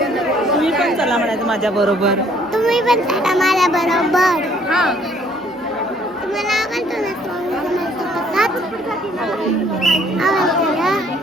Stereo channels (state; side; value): normal; both; correlation 0.61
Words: तुम्ही पण चला म्हणायचं माझ्या बरोबर. तुम्ही पण चला माझ्या बरोबर. हा तुम्हाला आवडतो ना स्वामींचा प्रसाद? आवडतो ना?